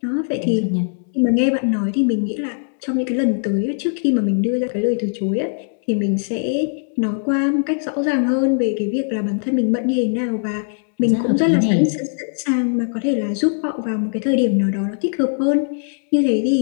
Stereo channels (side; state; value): right; silent; digital silence